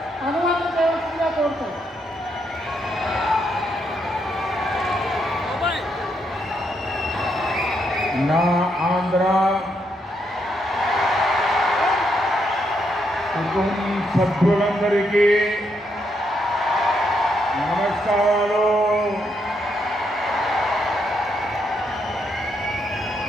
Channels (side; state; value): both; normal; correlation 0.78